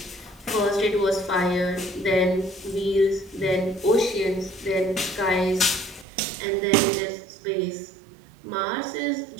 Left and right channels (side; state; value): left; drops out; at 6.1 s